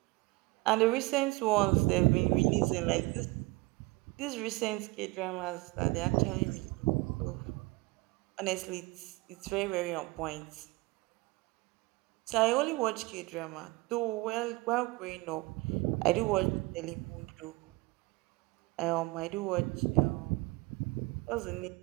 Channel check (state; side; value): quieter; left; 23.1 dB